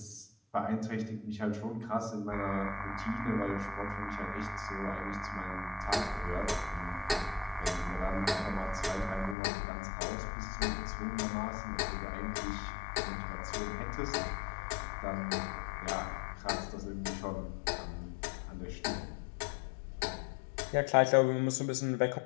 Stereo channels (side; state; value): right; drops out; at 9.3 s